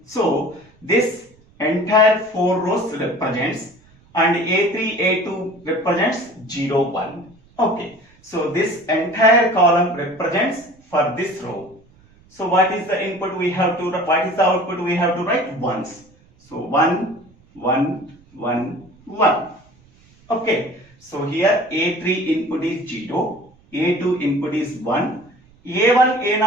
So, this entire 4 rows represents and A3, A2 represents 0, 1. Okay. So, this entire column represents for this row. So, what is the input we have to, what is the output we have to write? Ones. So, 1, 1, 1, 1. Okay, so here A3 input is 0, A2 input is 1, A1,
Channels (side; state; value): right; noise; rumble, 29 dB below the sound